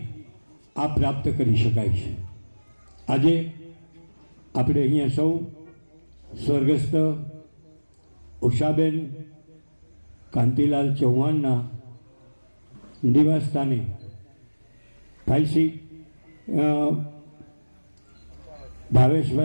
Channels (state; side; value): inverted; both; correlation -1.00